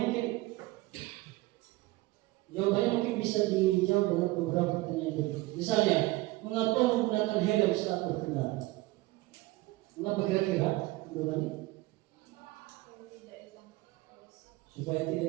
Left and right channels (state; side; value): quieter; left; 20.0 dB